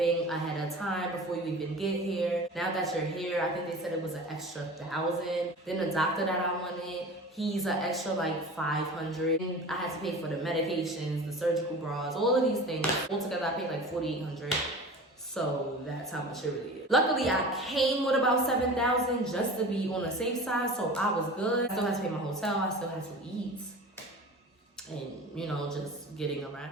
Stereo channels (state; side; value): normal; both; correlation 0.37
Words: ahead of time before you even get here. Now that you're here, I think they said it was an extra $1,000. Then the doctor that I wanted, he's an extra like $500. I had to pay for the medications, the surgical bras, all of these things. Altogether, I paid like $4,800. So that's how much it really is. Luckily, I came with about $7,000 just to be on the safe side, so I was good. I still had to pay my hotel. I still had to eat, and you know, just getting